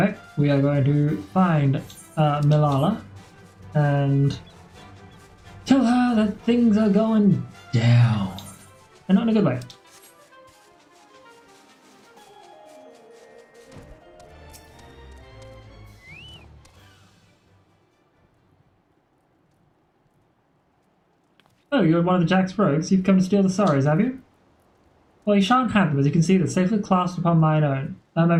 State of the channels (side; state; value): both; identical; correlation 1.00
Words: we are going to find Malala and tell her that things are going down. And not in a good way. Oh, you're one of the Jack's rogues. You've come to steal the sorrows, have you? Well, you shan't have them, as you can see, they're safely clasped upon mine own. My